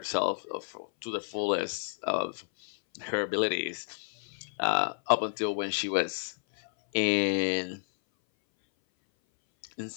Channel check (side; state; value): right; silent; 57 dB below the other